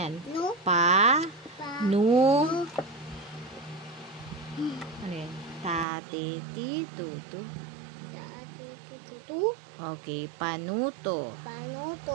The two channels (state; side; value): drops out; left; at 5.9 s